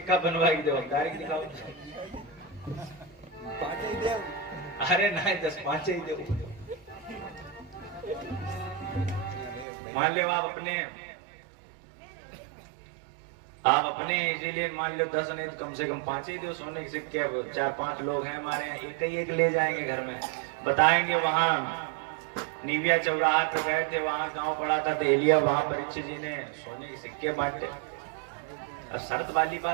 बनवा के दो, डायरेक्ट दिखाओ। अरे नहीं, 10 5 ही दो। मान लो आप अपने इसीलिए मान लो 10 नहीं तो कम से कम 5 ही दो सोने के सिक्के। अब 4-5 लोग हैं हमारे यहाँ, एक ही एक ले जाएंगे घर में, बताएंगे वहां निविया चौराहा पे गए थे, वहां गांव पड़ा था देहलिया, वहां परीक्षित जी ने सोने के सिक्के बांटे। अब शर्त वाली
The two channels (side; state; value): left; drops out; at 9.7 s